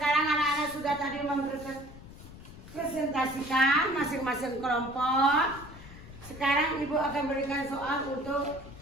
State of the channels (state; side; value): noise; left; rumble, 16 dB below the sound